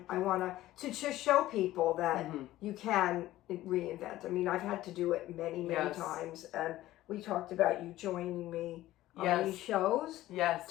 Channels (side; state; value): right; quieter; 15.4 dB